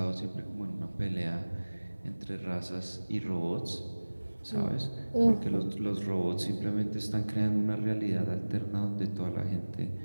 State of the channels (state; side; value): inverted; both; correlation -1.00